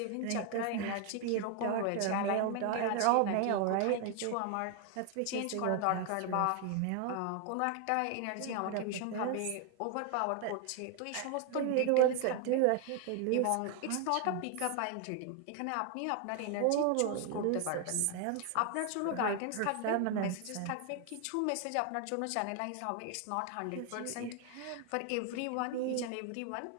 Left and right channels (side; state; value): both; different; correlation 0.00